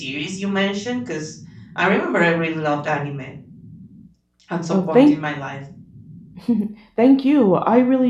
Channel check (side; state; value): both; identical; correlation 1.00